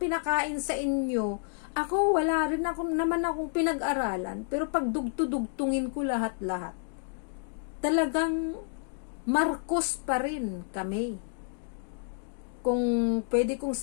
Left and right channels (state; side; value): silent; right; digital silence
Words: sa inyo? Ako, wala rin naman akong pinag-aralan. Pero pag dugtungin ko lahat-lahat, talagang Marcos pa rin kami. Kung pwede kong